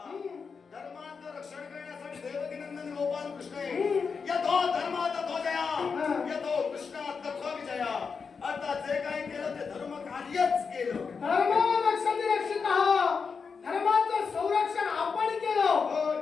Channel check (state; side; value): quieter; right; 5.5 dB